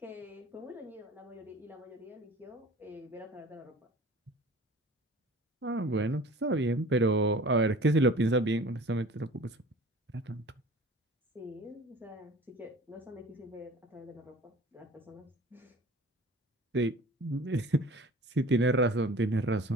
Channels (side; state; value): both; normal; correlation 0.43